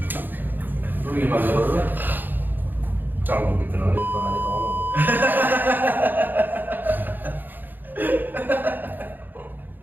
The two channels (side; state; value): left; late; 0.089 ms